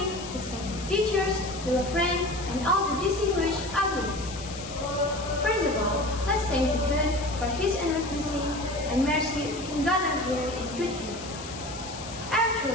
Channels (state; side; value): noise; left; hiss, 12 dB below the sound